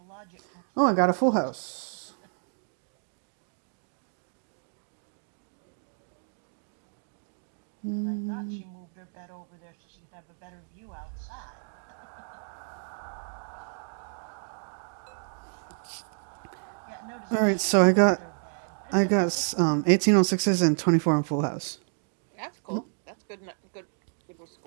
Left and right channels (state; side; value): silent; left; digital silence